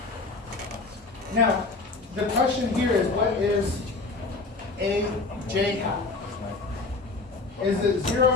Now, the question here is, what is a j hat? Is it 0,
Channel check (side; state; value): right; quieter; 3.6 dB